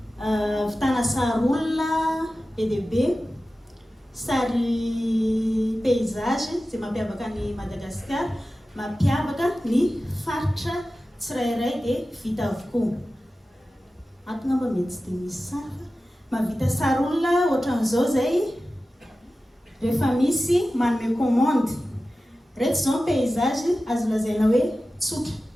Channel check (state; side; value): normal; both; correlation 0.95